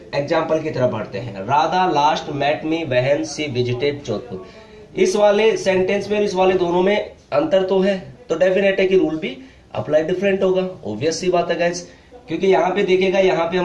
की तरफ बढ़ते हैं। Radha last met me when she visited Jodhpur. इस वाले सेंटेंस में इस वाले दोनों में अंतर तो है, तो डेफिनेट है कि रूल भी अप्लाई डिफरेंट होगा। ऑब्वियस सी बात है गाइस, क्योंकि यहाँ पे देखिएगा, यहाँ पे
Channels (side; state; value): both; identical; correlation 1.00